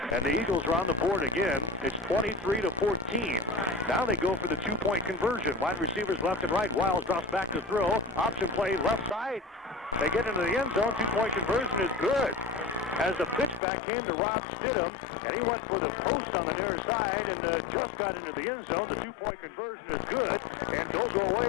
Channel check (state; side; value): drops out; right; at 13.6 s